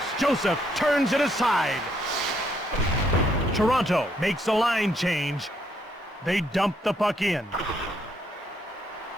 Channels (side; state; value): both; normal; correlation 0.73